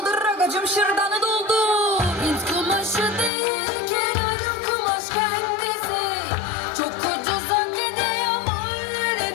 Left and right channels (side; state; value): right; drops out; at 3.3 s